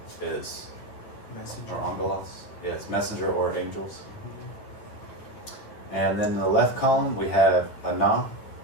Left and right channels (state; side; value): late; right; 9.9 ms